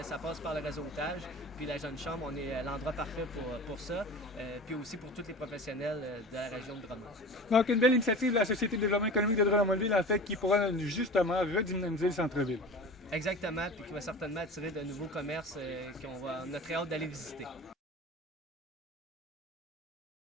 ça passe par le réseautage. Puis la Jeune Chambre, on est l'endroit parfait pour ça. Puis aussi pour tous les professionnels de la région de Drummond. Donc, une belle initiative de la Société de développement économique de Drummondville, en fait, qui pourra justement redynamiser le centre-ville. Exactement, puis qui va certainement attirer de nouveaux commerces qu'on a très hâte d'aller visiter.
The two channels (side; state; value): both; normal; correlation 0.36